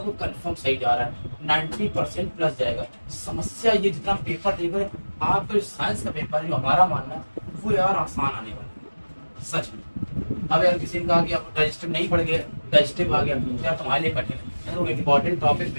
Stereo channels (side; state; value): both; inverted; correlation -1.00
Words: कंफर्म सही जा रहा है, 90% प्लस जाएगा। समस्या ये जितना पेपर देख रहे आपका साइंस का पेपर जो हमारा मानना है वो यार आसान आने वाला है, सच में। अब यार किसी ने कहा कि आप डाइजेस्टिव नहीं पढ़ गए, डाइजेस्टिव आ गया तो यार तुम्हारे लिए कठिन है। तो इम्पोर्टेंट टॉपिक